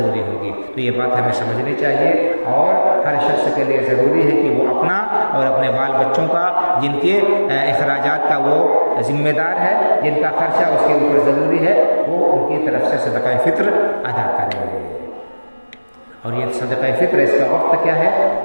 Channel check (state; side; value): inverted; both; correlation -1.00